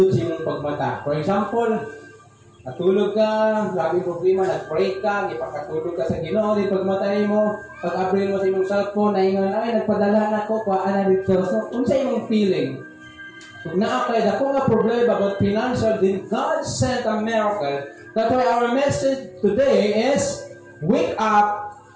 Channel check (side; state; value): both; identical; correlation 1.00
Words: sa iyong pagmata. For example, natulog ka, lagi problema, nag-pray ka, ipakatulog ka sa Ginoo, di pagmatay mo, pag-abril mo sa imong cellphone, naingon, ay, nagpadala na ko, kuhaan na dito. So, kung sa imong feeling, kung naakay na kung nga problema about financial, then God sent a miracle. That's why our message today is, wake up